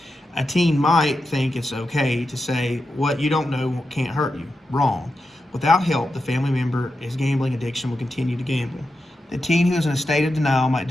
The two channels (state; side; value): normal; both; correlation 0.89